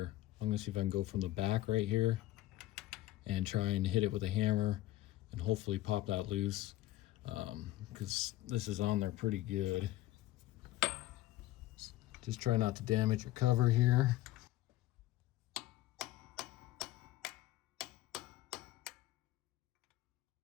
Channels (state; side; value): quieter; right; 15.7 dB